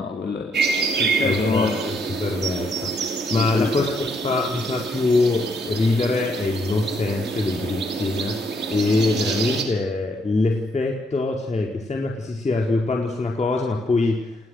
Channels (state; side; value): normal; both; correlation 0.73